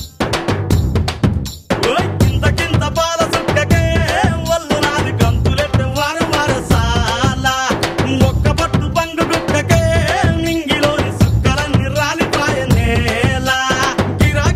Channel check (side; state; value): both; identical; correlation 1.00